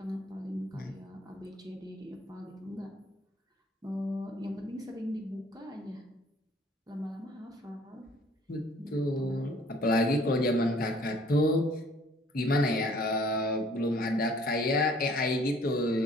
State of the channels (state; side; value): normal; both; correlation 0.57